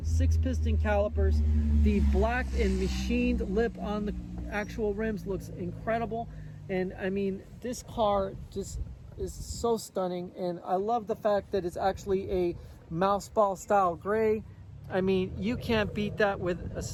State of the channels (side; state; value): both; identical; correlation 1.00